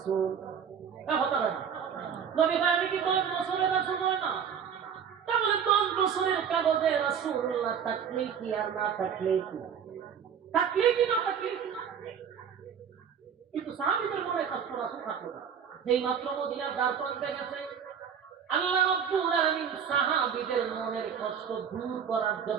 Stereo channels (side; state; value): left; quieter; 7.6 dB